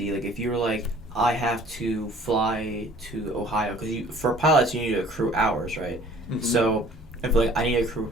like if you were like, I have to fly to Ohio, because for pilots you need to accrue hours, right? Mhm. So if like I need to accrue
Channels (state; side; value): normal; both; correlation 0.52